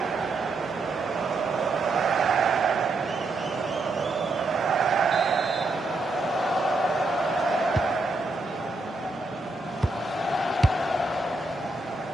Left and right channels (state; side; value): quieter; left; 3.2 dB